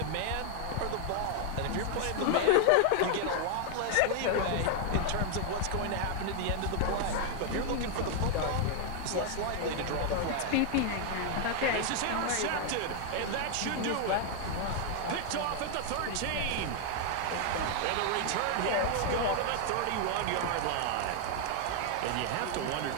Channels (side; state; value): both; different; correlation 0.00